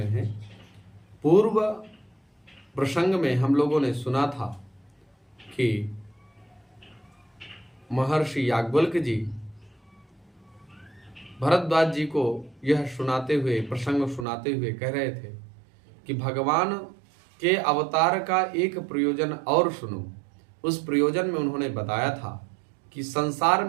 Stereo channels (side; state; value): left; drops out; at 14.2 s